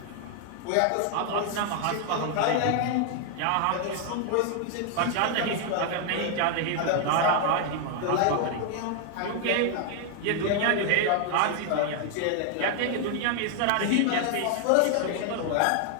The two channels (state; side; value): different; both; correlation 0.00